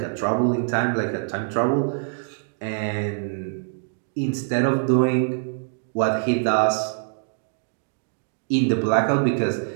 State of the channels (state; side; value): silent; left; digital silence